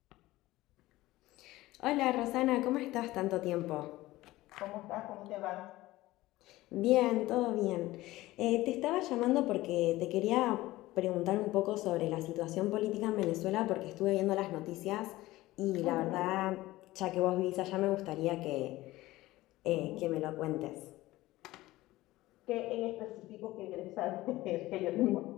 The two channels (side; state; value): right; quieter; 17.7 dB